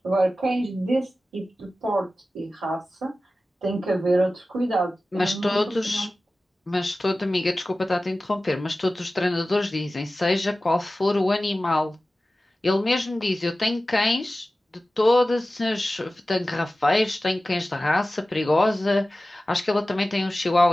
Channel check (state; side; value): normal; both; correlation 0.95